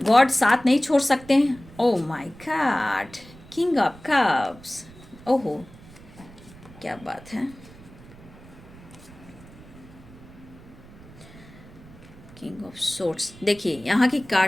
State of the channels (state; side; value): noise; right; rumble, 20 dB below the sound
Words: साथ नहीं छोड़ सकते हैं। Oh my God, king of cups, ओहो क्या बात है। King of swords. देखिए यहाँ की